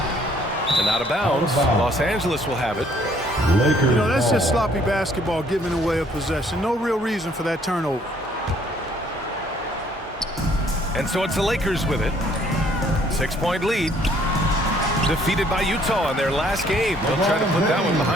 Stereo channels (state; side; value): normal; both; correlation 0.62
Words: the And out of bounds. Los Angeles will have it. Lakers. You know, that's just ball. sloppy basketball, giving away a possession. No real reason for that turnover. And so it's the Lakers with it. 6-point lead. Defeated by Utah in their last game. They'll try to put that one